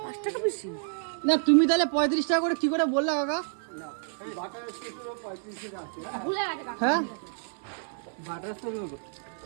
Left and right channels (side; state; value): left; silent; digital silence